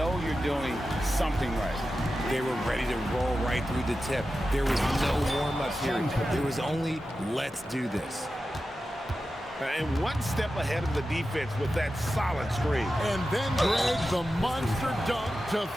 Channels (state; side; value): normal; both; correlation 0.92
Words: you're doing something right. They were ready to roll right through the tip. There was no warm-up period. There was only, let's do this. And one step ahead of the defense with that solid screen. And then Greg, the monster dunk to